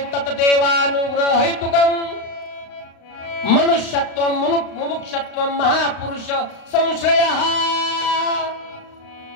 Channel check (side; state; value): right; late; 35 ms